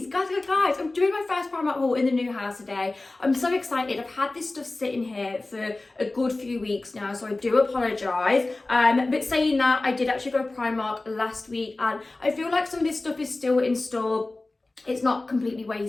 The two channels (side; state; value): right; quieter; 3.1 dB